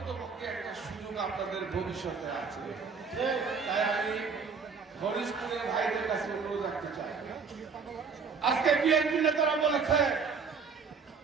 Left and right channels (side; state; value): left; quieter; 5.4 dB